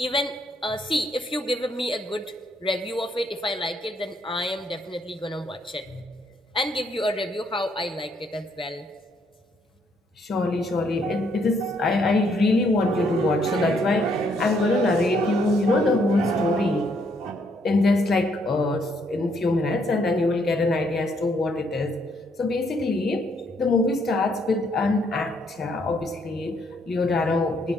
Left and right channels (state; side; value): normal; both; correlation 0.71